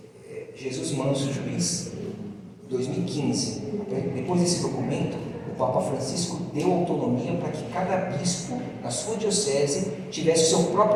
Jesus Manso Juiz, 2015. Depois desse documento, o Papa Francisco deu autonomia para que cada bispo, na sua diocese, tivesse o seu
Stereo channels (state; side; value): identical; both; correlation 1.00